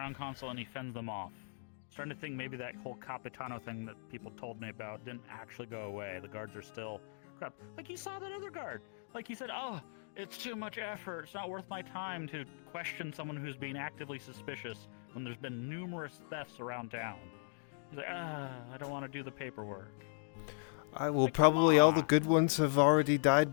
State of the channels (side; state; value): right; silent; digital silence